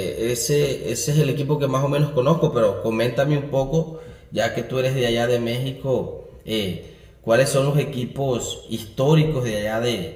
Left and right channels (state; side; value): identical; both; correlation 1.00